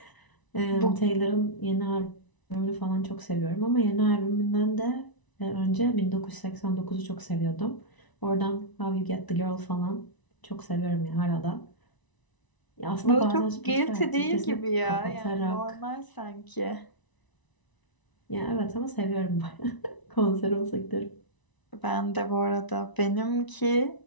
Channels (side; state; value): right; late; 1.0 ms